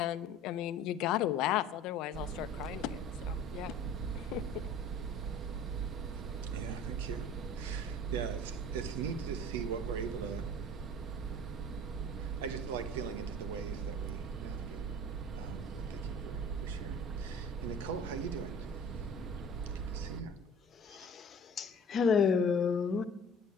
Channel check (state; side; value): normal; both; correlation 0.43